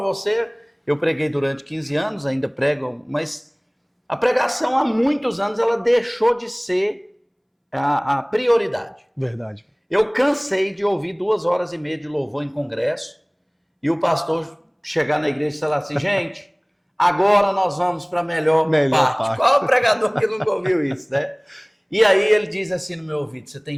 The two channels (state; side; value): identical; both; correlation 1.00